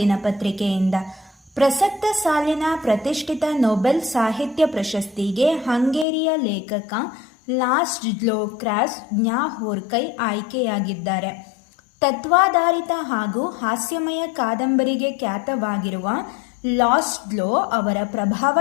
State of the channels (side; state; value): right; drops out; at 6.1 s